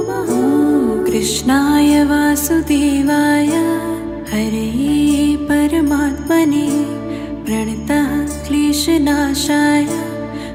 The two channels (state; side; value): identical; both; correlation 1.00